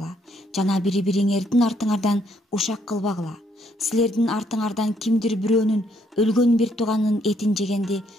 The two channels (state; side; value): normal; both; correlation 0.70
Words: жана бири-бириңердин артыңардан ушак кылбагыла. Силердин артыңардан кимдир бирөөнүн өлгөн бир тууганын этин жегенди